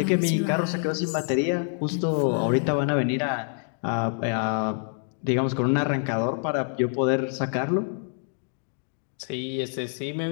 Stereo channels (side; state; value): right; silent; 61 dB below the other